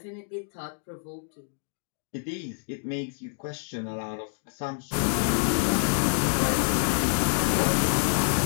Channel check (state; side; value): silent; right; digital silence